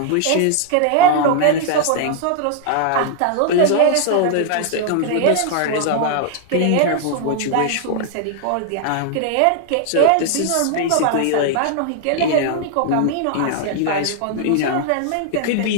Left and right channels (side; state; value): both; different; correlation 0.00